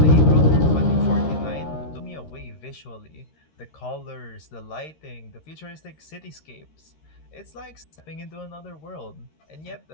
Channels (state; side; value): late; right; 13 ms